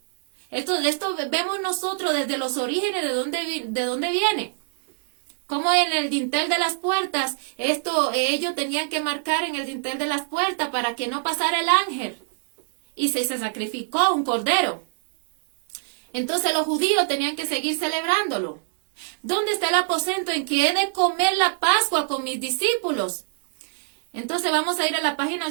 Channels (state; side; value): silent; left; digital silence